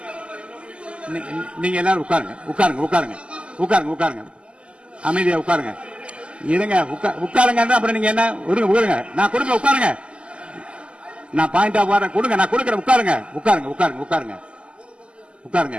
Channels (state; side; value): late; left; 0.054 ms